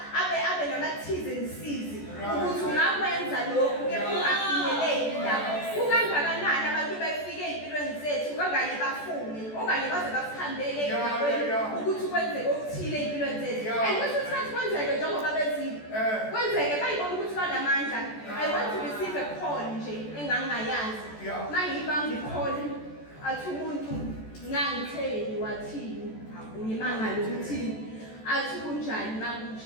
abe namathize nisizi ukuthi ungakwenza lokhu kepha ungafinyeleli lapho. Kukangakanani abantu befike empilweni zethu kanganye bafune okanye baze basihambele ukuthi kwenzeke okuthile empilweni zethu. And kwesinye isikhathi kwenzeke njengoba bezile kwenzeke bayibona ukuthi banamandla. I want to receive a call nje engangayazi mangiyibamba ikholi athi umuntu ngangitheli wathini ngimangala ukuthi athi kunjani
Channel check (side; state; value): right; late; 14 ms